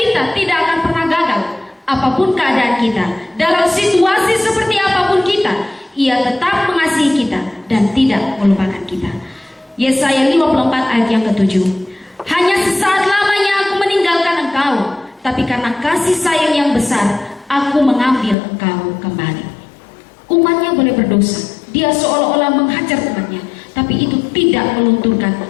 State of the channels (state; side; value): drops out; right; at 18.4 s